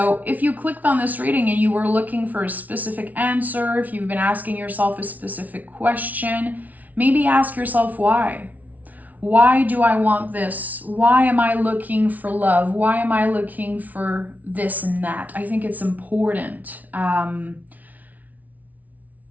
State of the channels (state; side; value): late; left; 0.074 ms